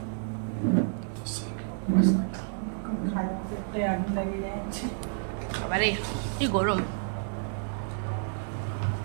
এবারে কি গরম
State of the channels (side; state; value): left; silent; digital silence